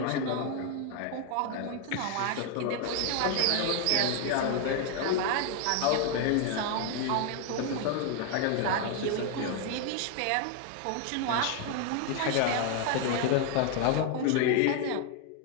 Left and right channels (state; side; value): different; both; correlation 0.00